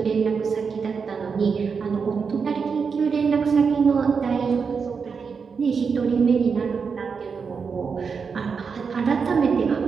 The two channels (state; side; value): quieter; left; 5.7 dB